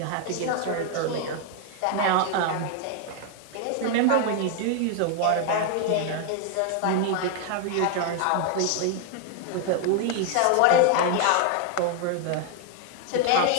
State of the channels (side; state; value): both; different; correlation 0.00